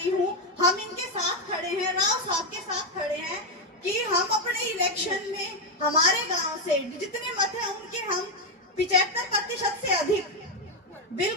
हूँ। हम इनके साथ खड़े हैं, राव साहब के साथ खड़े हैं कि हम अपने इलेक्शन में हमारे गांव से जितने मत हैं उनके हम 75% से अधिक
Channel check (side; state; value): both; normal; correlation 0.05